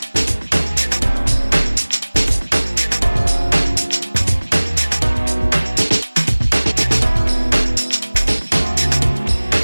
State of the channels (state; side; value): inverted; both; correlation -1.00